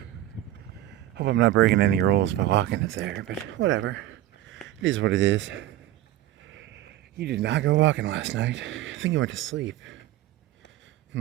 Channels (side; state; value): left; quieter; 14.1 dB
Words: Hope I'm not breaking any rules by walking it there, but whatever. It is what it is. You did not go walking last night. I think you went to sleep.